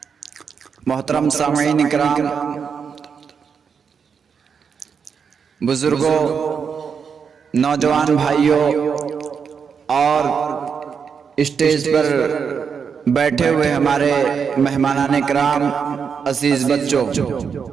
محترم سامعین اکرام، بزرگوں، نوجوان بھائیوں اور اسٹیج پر بیٹھے ہوئے ہمارے مہمانان اکرام، عزیز بچوں،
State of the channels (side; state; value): left; quieter; 6.4 dB